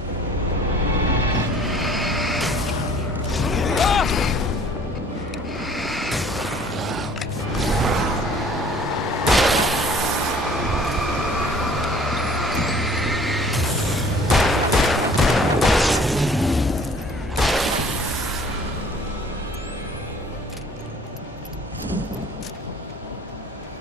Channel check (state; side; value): normal; both; correlation 0.53